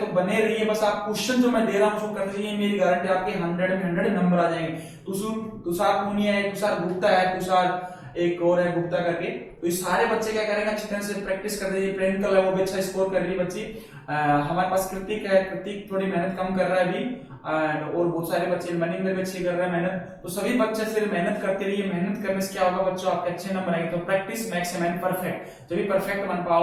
तो बने रहिए, बस आप क्वेश्चन जो मैं दे रहा हूं उसको कर लीजिए, मेरी गारंटी आपके 100 में 100 नंबर आ जाएंगे। तुषार पूनिया है, तुषार गुप्ता है, तुषार एक और है गुप्ता करके, तो ये सारे बच्चे क्या करेंगे, अच्छी तरह से प्रैक्टिस कर दीजिए। प्रियंका है वो भी अच्छा स्कोर कर रही है बच्ची। हमारे पास कृतिक है, कृतिक थोड़ी मेहनत कम कर रहा है अभी, और बहुत सारे बच्चे मनिंदर भी अच्छी कर रहे हैं मेहनत। तो सभी बच्चे सिर्फ मेहनत करते रहिए, मेहनत करने से क्या होगा बच्चों, आपके अच्छे नंबर आएंगे। तो प्रैक्टिस मैक्स मैन परफेक्ट, जब भी परफेक्ट बन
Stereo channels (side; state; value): both; identical; correlation 1.00